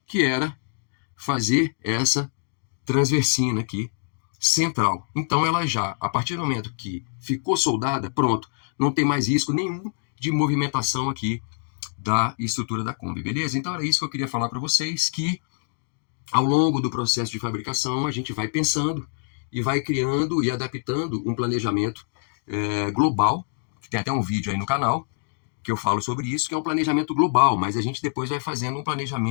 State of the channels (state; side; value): silent; right; 62 dB below the other